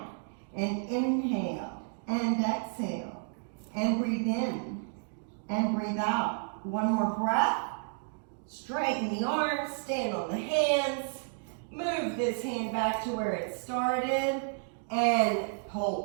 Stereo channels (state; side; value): silent; left; 57 dB below the other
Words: And inhale and exhale and breathe in and breathe out. One more breath. Straighten the arms, stand on the hands. Move this hand back to where it started and